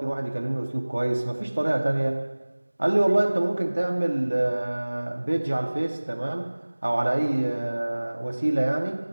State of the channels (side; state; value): both; inverted; correlation -1.00